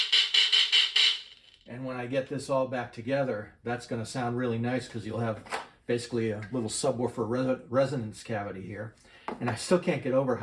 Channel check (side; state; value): both; identical; correlation 1.00